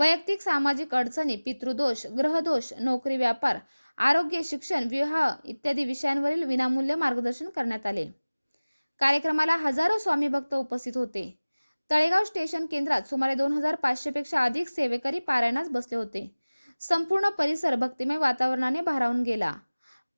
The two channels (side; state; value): both; inverted; correlation -1.00